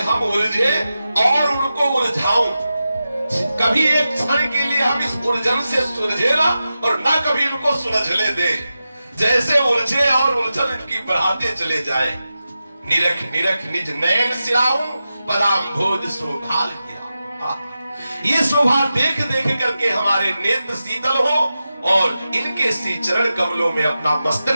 उलझे और उनको उलझाऊं। कभी एक क्षण के लिए हम इस उलझन से सुलझे ना, और ना कभी इनको सुलझने दे। जैसे उलझे और उलझन इनकी बढ़ाते चले जाए। निरख निरख निज नयन सिराऊं, पदाम भोज शोभाल किया। ये शोभा देख देख करके हमारे नेत्र शीतल हो, और इनके श्री चरण कमलों में अपना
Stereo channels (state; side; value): inverted; both; correlation -0.92